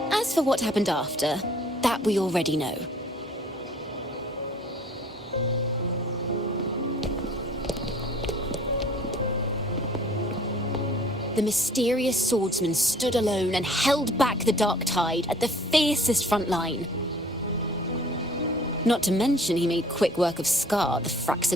As for what happened after, that we already know. The mysterious swordsman stood alone and held back the dark tide at the fiercest front line. Not to mention he made quick work of Scar, the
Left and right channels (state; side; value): normal; both; correlation 0.53